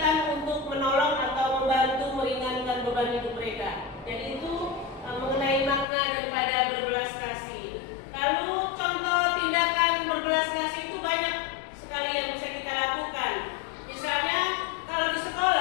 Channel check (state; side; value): drops out; right; at 5.9 s